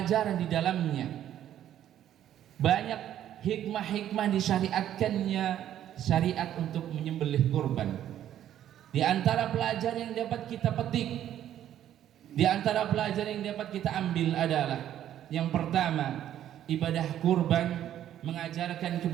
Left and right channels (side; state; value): left; quieter; 11.3 dB